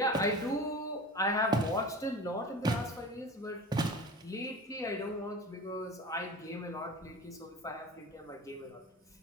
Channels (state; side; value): normal; both; correlation 0.34